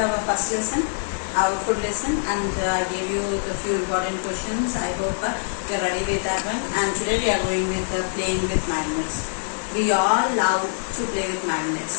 our first lesson, our food lesson, and I gave you the few important questions. I hope you are ready with that one. And today we are going with playing with magnets. We all love to play with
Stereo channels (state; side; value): silent; right; digital silence